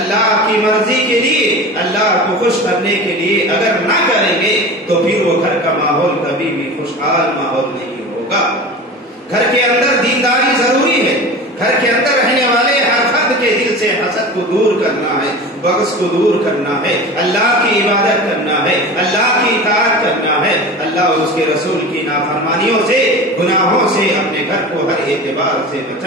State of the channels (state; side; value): normal; both; correlation 0.33